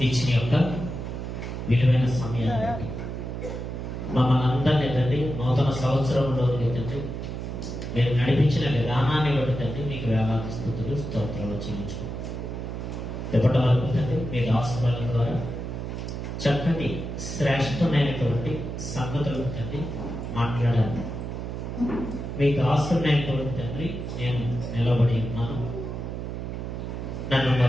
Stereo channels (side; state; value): right; noise; hum, 6 dB below the sound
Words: ఇచ్చిన యొక్క విలువైన సమయాన్ని మమ్మల్ని అందరినీ తండ్రి నూతన సంవత్సరంలో తండ్రి మీరు నడిపించిన విధానాన్ని బట్టి తండ్రి మీకు వేలాది స్థుతులు స్తోత్రాలు చెల్లించుకుంటాం. ఇప్పటి వరకు తండ్రి మీ దాసుల ద్వారా చక్కటి శ్రేష్టమైనటువంటి సంగతులు తండ్రి మాట్లాడాలి. మీ దాసులైనటువంటి తండ్రి నేను నిలబడి ఉన్నాను, నన్ను